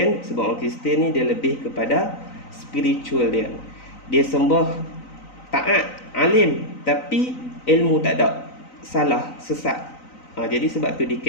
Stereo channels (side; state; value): right; late; 3.9 ms